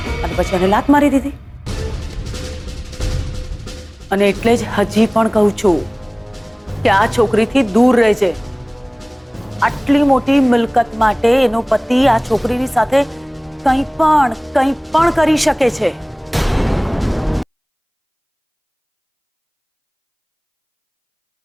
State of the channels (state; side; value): identical; both; correlation 1.00